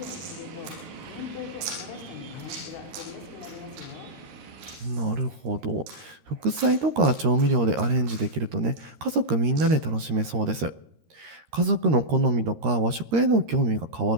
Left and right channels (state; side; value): late; left; 13 ms